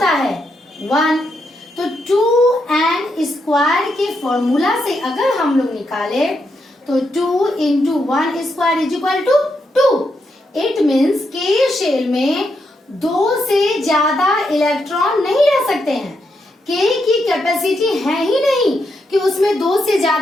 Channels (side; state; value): both; normal; correlation 0.81